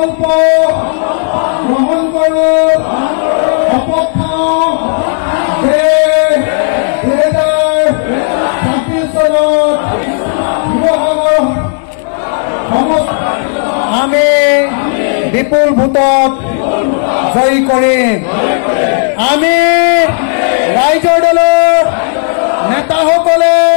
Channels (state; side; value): silent; right; digital silence